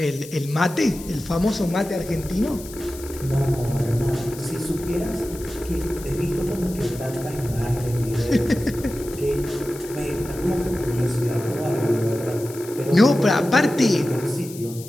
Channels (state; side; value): noise; left; hiss, 16 dB below the sound